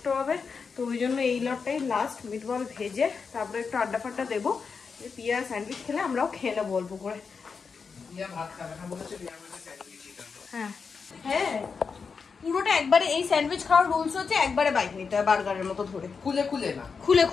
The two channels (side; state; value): right; quieter; 5.4 dB